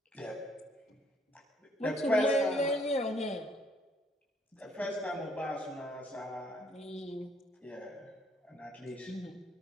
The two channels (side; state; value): both; normal; correlation 0.66